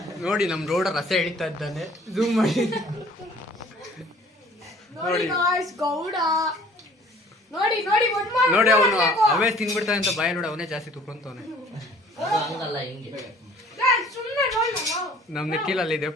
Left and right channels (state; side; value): normal; both; correlation 0.53